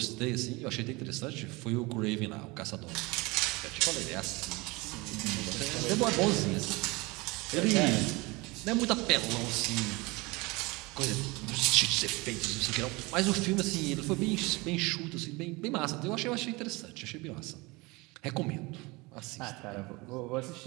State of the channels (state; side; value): quieter; left; 24.4 dB